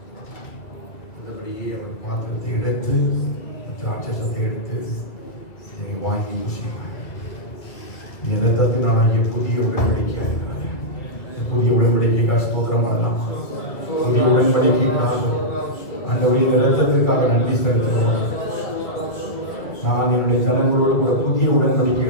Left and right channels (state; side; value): late; right; 2.1 ms